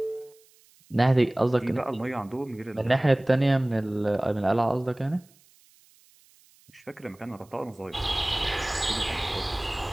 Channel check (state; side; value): noise; right; hiss, 30 dB below the sound